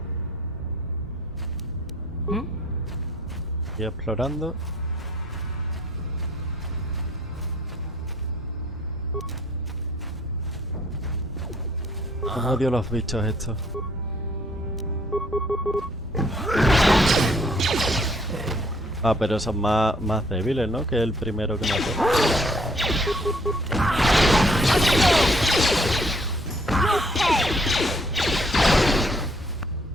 Estoy explorando. Odio los bichos estos. Ah, pero son más débiles, ¿no? Que el primero que mató.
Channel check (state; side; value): normal; both; correlation 0.63